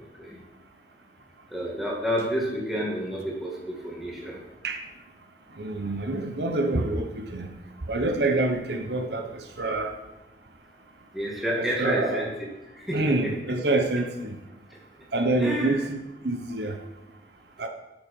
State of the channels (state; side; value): normal; both; correlation 0.47